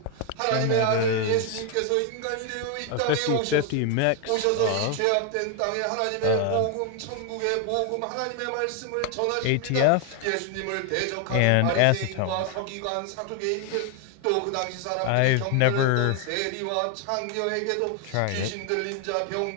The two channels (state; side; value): different; both; correlation 0.01